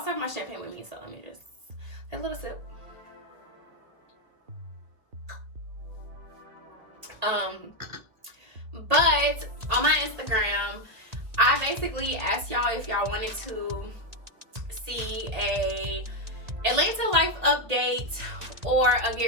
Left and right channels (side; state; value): left; late; 2.1 ms